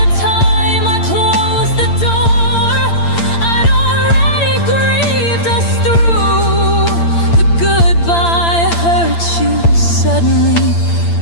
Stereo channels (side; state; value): right; late; 8.8 ms